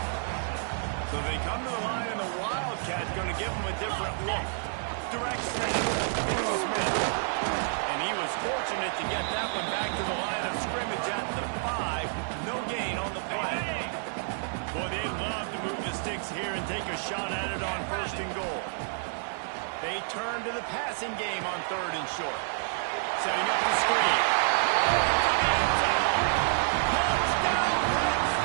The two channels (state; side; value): silent; left; 58 dB below the other